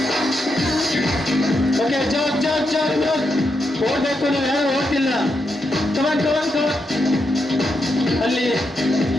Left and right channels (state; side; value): normal; both; correlation 0.83